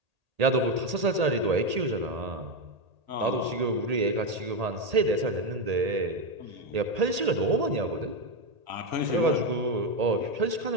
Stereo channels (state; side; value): late; left; 1.8 ms